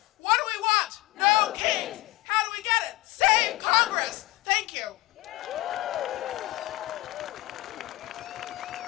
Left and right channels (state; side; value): quieter; right; 19.2 dB